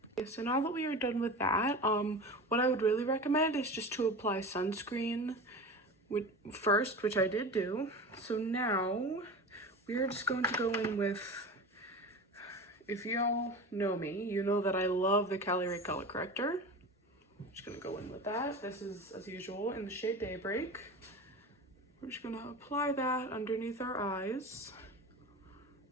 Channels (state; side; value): normal; both; correlation 0.31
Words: Okay, so now that we are done with that, what I would really recommend is just to apply sunscreen first, which I did do. So now we are just going to go in with, if y'all know me, you know that I love the Cali Ray Color Corrector. I'm just gonna go in with that. This is, as usual, in the shade Daybreak. We're just gonna apply that underneath our eyes.